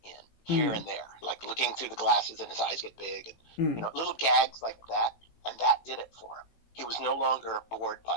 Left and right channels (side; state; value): right; late; 18 ms